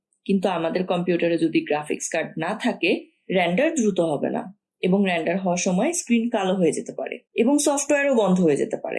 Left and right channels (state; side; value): identical; both; correlation 1.00